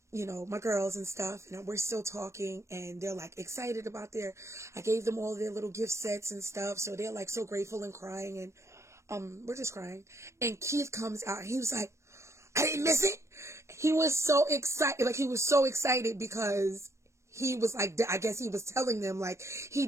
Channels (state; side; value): late; left; 0.14 ms